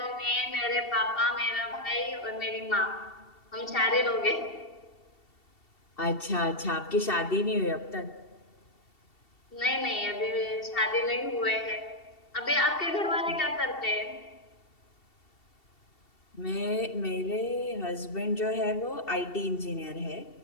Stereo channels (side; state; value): right; late; 2.7 ms